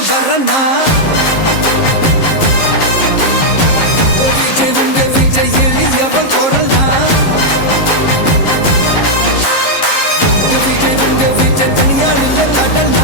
வரனா விஜய் உங்க விஜய் எளியவன் குரல்னா விஜய் உங்க விஜய் தனியால் இல்ல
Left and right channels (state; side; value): late; right; 11 ms